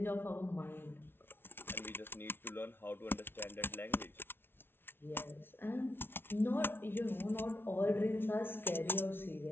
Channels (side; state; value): right; late; 0.11 ms